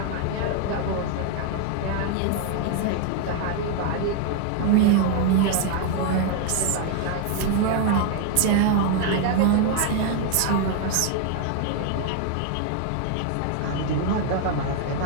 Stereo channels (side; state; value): both; different; correlation 0.00